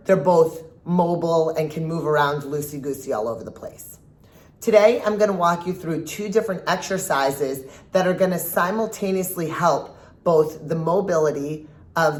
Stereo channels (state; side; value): identical; both; correlation 1.00